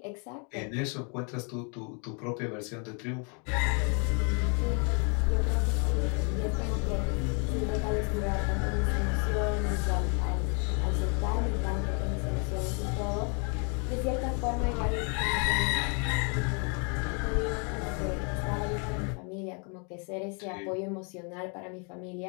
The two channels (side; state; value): right; quieter; 36.7 dB